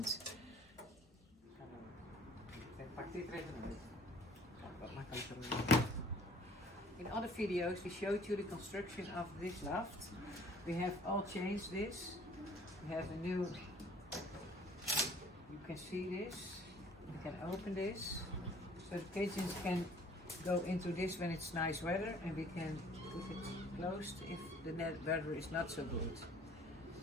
In other videos we showed you the construction of this loft. We have all changed this. We have a new, you can see this, you can open this, so the pigeons can go into this when it's nice weather, and we can put it closed if the weather is not so good.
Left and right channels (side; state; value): both; normal; correlation 0.54